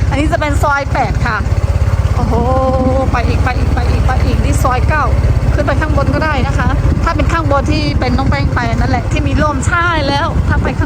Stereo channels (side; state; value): both; identical; correlation 1.00